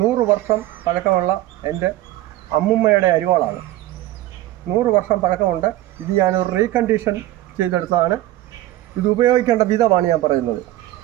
100 വർഷം പഴക്കമുള്ള എൻ്റെ അമ്മുമ്മയുടെ അരിവാളാണ്. 100 വർഷം പഴക്കമുണ്ട്. ഇത് ഞാനൊരു റീകണ്ടീഷൻ ചെയ്തെടുത്തതാണ്. ഇത് ഉപയോഗിക്കേണ്ട വിധമാണ് ഞാൻ പറയുന്നത്.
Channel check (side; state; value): left; quieter; 15.3 dB